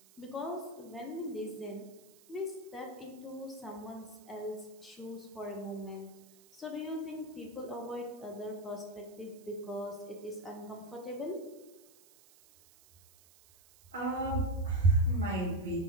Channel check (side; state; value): right; noise; hiss, 24 dB below the sound